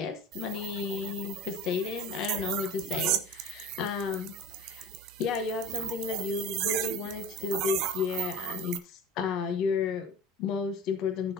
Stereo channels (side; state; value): both; normal; correlation 0.36